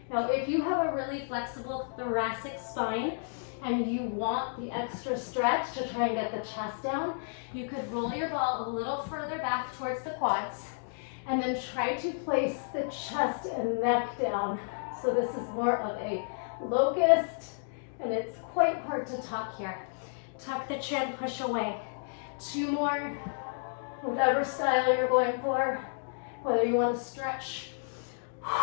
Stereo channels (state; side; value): silent; right; digital silence